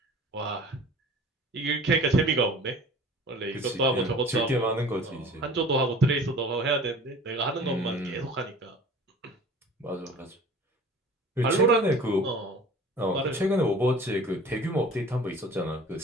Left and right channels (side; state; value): both; normal; correlation 0.44